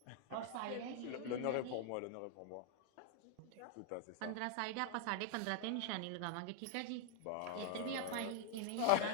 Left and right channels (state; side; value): different; both; correlation 0.00